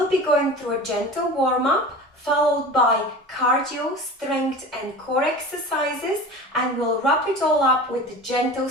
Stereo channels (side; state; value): both; normal; correlation 0.35